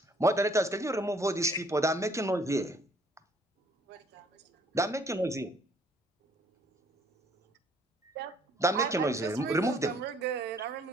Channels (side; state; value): both; normal; correlation 0.61